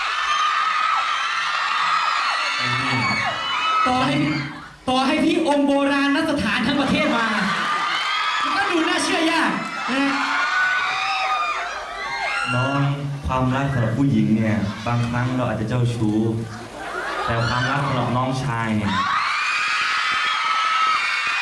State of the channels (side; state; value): both; identical; correlation 1.00